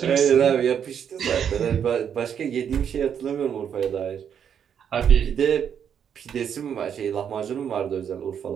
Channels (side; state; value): left; quieter; 8.2 dB